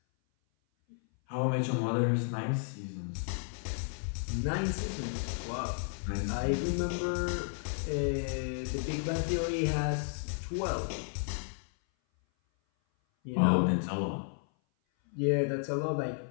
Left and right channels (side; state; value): right; silent; 56 dB below the other